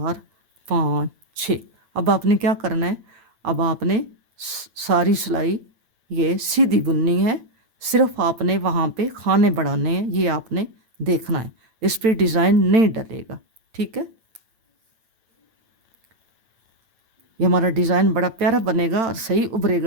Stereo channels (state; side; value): late; left; 8.9 ms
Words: पाँच छः। अब आपने क्या करना है, अब आपने सारी सिलाई ये सीधी बुननी है, सिर्फ आपने वहाँ पे खाने बढ़ाने हैं, ये आपने देखना है, इस पर डिज़ाइन नहीं डलेगा। ठीक है, ये हमारा डिज़ाइन बड़ा प्यारा बनेगा और सही